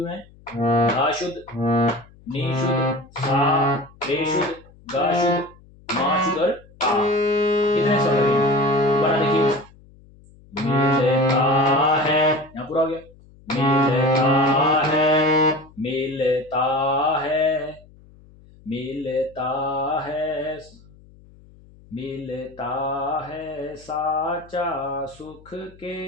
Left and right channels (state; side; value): noise; left; hum, 25 dB below the sound